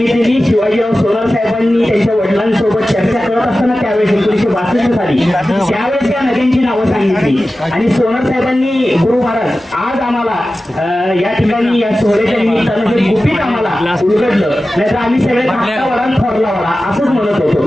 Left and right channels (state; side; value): normal; both; correlation 0.95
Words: शिवाजीराव सोनर साहेबांनी त्यांच्या वडिलांसोबत चर्चा करत असताना त्यावेळेस 1962 साली त्यावेळेस या नद्यांची नावं सांगितली. आणि सोनर साहेबांनी गुरु महाराज आज आम्हाला या ठिकाणी या सोहळ्याच्या निमित्तानं हे गुपित आम्हाला उलगडलं. नाहीतर आम्ही सगळे धाकटा वडा थोरला वडा असंच म्हणत होतो.